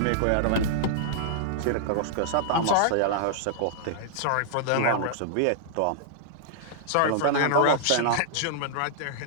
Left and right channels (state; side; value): different; both; correlation -0.01